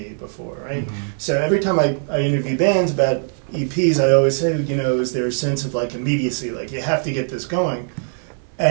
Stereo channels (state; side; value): silent; left; digital silence